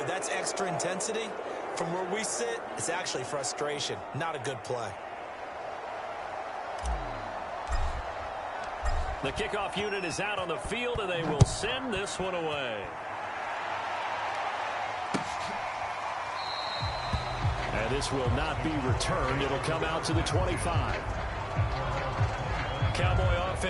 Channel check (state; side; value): identical; both; correlation 1.00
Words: that's extra intensity. From where we sit, it's actually frustration, not a good play. The kickoff unit is out on the field, and they will send this one away. And this will not be returned. It'll come out to the 25. Cowboy